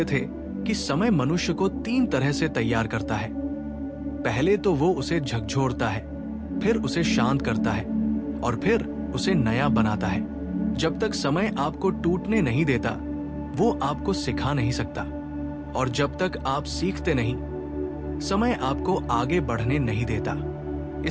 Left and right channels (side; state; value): both; identical; correlation 1.00